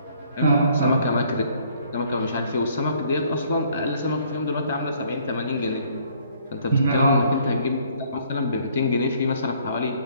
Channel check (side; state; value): both; inverted; correlation -0.62